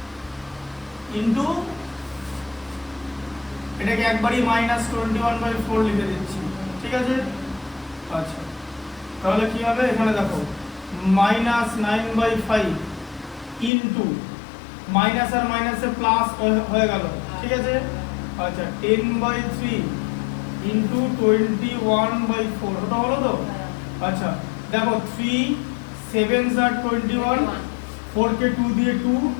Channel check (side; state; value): right; drops out; at 13.7 s